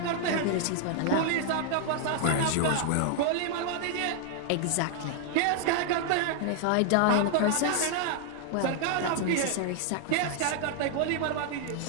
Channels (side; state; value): both; different; correlation 0.00